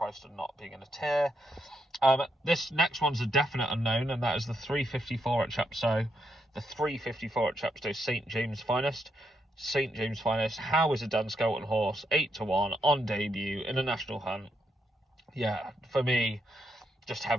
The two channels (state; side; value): normal; both; correlation 0.79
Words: and not being in a tier. This next one's a definite unknown, and that is the 354 at Chepstow. The 354 at Chepstow, St James Finest. How is a Dan Skelton horse? 8-1 on debut in a national hunt. Yeah, for me, just